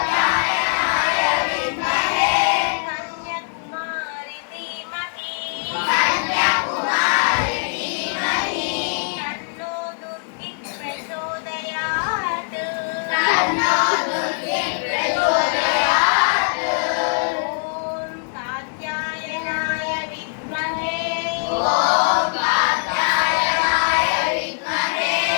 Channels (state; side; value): silent; right; 64 dB below the other